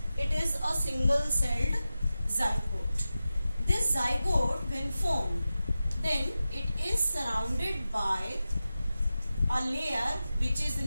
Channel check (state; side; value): inverted; both; correlation -0.94